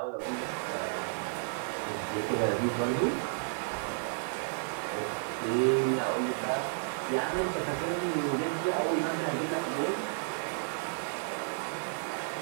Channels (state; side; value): silent; left; 55 dB below the other